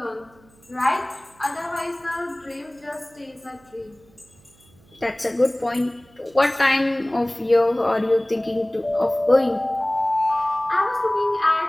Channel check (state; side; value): noise; right; hum, 29 dB below the sound